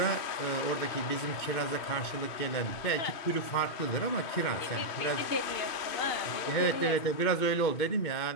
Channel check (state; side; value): late; right; 2.5 ms